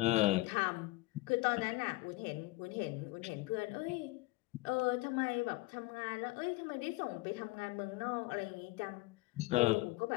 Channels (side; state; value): right; quieter; 21.2 dB